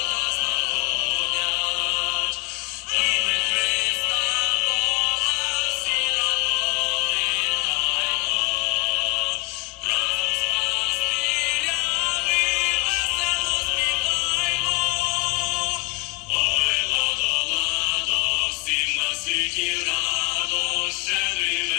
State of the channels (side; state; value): right; quieter; 27.7 dB